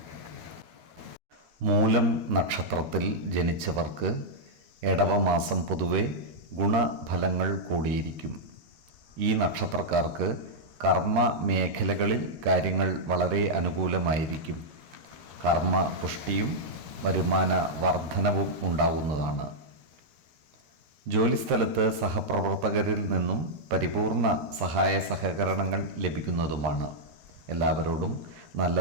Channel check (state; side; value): late; left; 13 ms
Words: മൂലം നക്ഷത്രത്തിൽ ജനിച്ചവർക്ക് എടവമാസം പൊതുവെ ഗുണഫലങ്ങൾ കൂടിയിരിക്കും. ഈ നക്ഷത്രക്കാർക്ക് കർമ്മ മേഖലകളിൽ കാര്യങ്ങൾ വളരെ അനുകൂലമായിരിക്കും. കർമ്മ പുഷ്ടിയും വരുമാന വർധനവും ഉണ്ടാകുന്നതാണ്. ജോലിസ്ഥലത്ത് സഹപ്രവർത്തകരിൽ നിന്നും പരിപൂർണ സഹായ സഹകരണങ്ങൾ ലഭിക്കുന്നതുമാണ്. എല്ലാവരോടും നല്ല